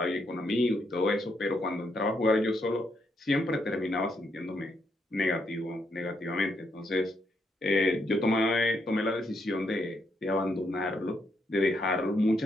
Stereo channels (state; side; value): normal; both; correlation 0.77